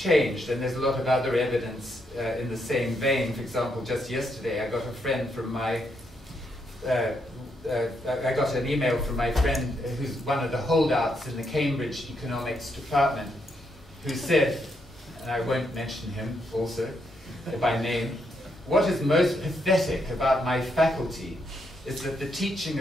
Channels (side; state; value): both; normal; correlation 0.78